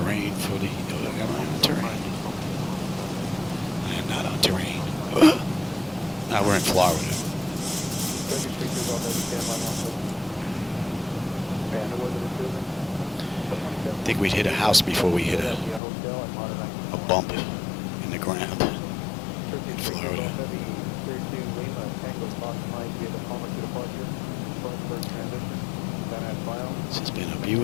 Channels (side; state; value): right; drops out; at 15.8 s